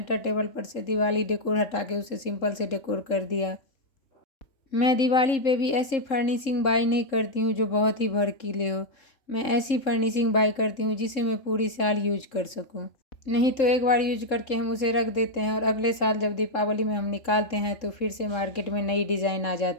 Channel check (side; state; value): right; late; 3.7 ms